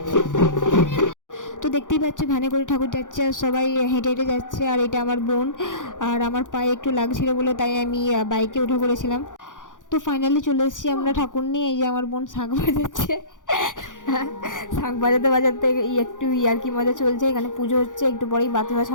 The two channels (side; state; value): right; late; 0.87 ms